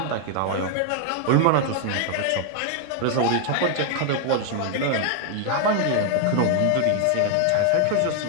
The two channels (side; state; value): both; different; correlation 0.00